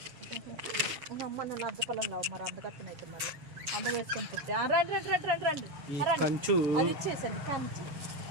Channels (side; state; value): left; late; 7.1 ms